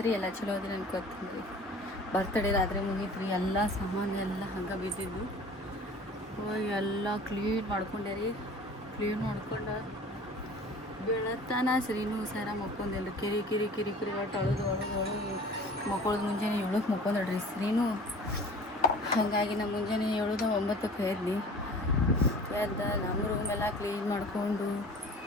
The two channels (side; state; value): both; normal; correlation 0.44